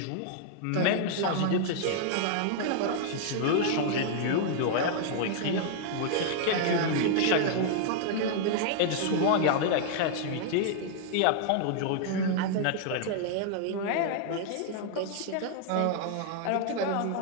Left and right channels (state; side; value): different; both; correlation 0.00